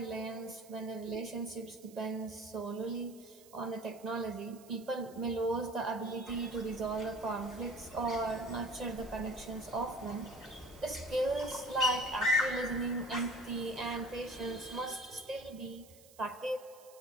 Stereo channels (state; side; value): noise; right; hiss, 23 dB below the sound